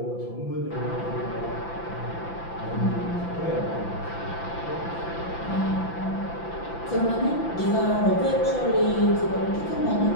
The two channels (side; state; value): right; late; 5.9 ms